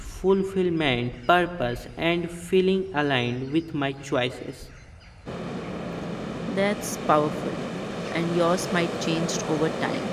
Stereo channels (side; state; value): both; identical; correlation 1.00